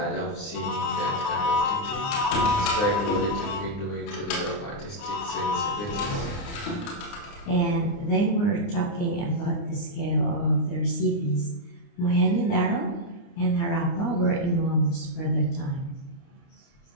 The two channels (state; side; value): late; right; 29 ms